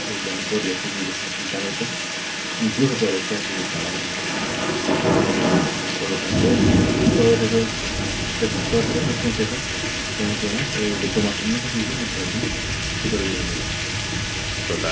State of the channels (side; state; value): both; identical; correlation 1.00